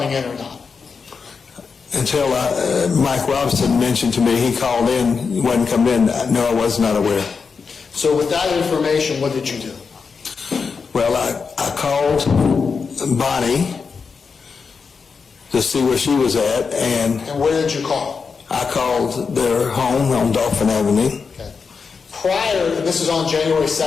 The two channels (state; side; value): quieter; right; 5.3 dB